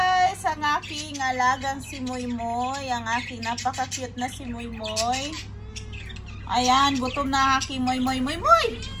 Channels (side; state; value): both; identical; correlation 1.00